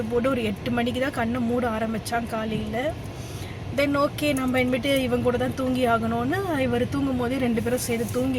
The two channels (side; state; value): both; identical; correlation 1.00